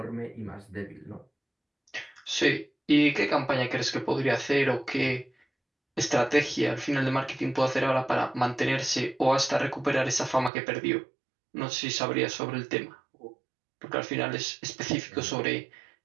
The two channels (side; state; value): left; drops out; at 10.5 s